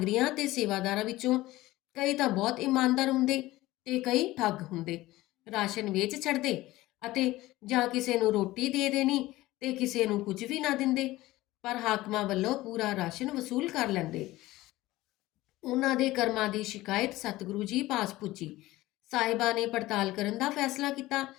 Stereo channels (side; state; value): right; quieter; 17.7 dB